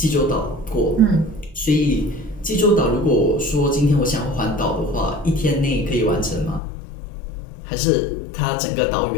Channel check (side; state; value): right; drops out; at 6.6 s